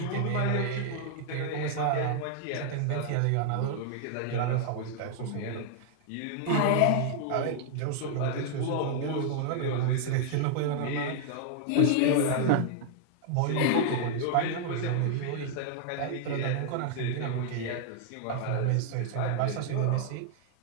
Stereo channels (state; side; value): different; both; correlation -0.01